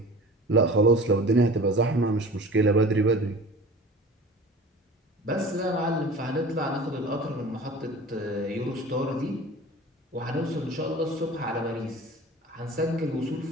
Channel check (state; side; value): normal; both; correlation 0.40